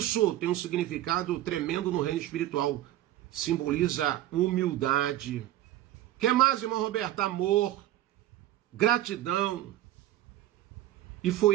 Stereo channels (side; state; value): left; quieter; 13.8 dB